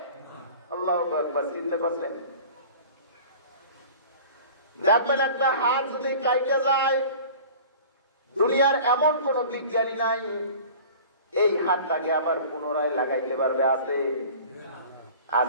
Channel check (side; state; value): both; inverted; correlation -0.42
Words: আল্লাহু আকবার। চিন্তা করছেন? দেখবেন একটা হাত যদি কাইটে যায়, দুনিয়ার এমন কোন বিজ্ঞানী নাই এই হাতটাকে আবার পুনরায় লাগাইতে পারবে।